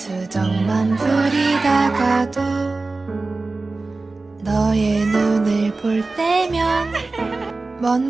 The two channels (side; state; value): left; quieter; 3.5 dB